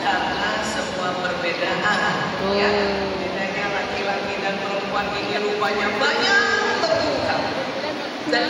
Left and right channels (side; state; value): both; identical; correlation 1.00